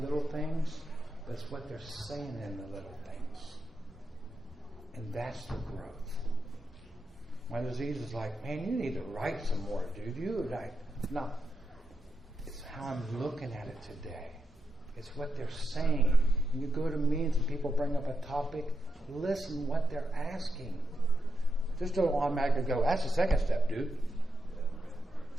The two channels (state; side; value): normal; both; correlation 0.85